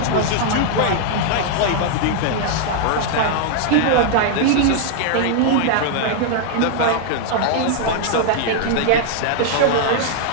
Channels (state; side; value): different; both; correlation -0.01